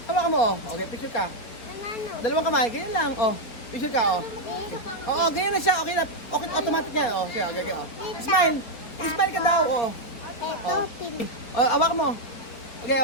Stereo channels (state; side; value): late; right; 4.2 ms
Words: Hawak mo, oh. Okay, picture ka. Dalawang kamay, ganyan lang, oh. Picture ka, oh. Oo, ganyan na siya. Okay na. Okay, automatic yan, oh. Siya, okay, oh. Smile. Smile ka daw, oh. Oh. Hawak mo. Okay,